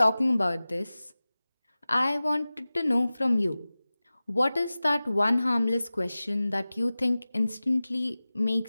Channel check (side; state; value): both; inverted; correlation -0.97